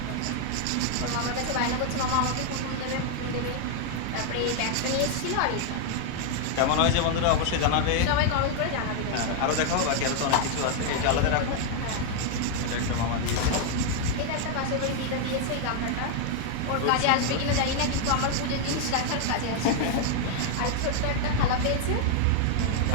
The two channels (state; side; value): different; both; correlation 0.00